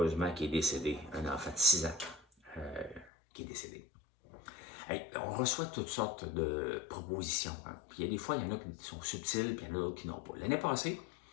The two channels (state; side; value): drops out; right; at 3.1 s